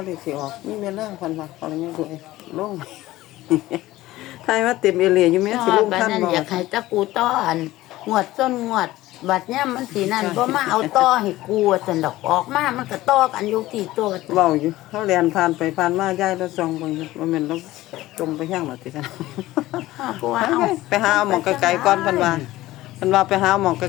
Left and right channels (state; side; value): quieter; right; 16.7 dB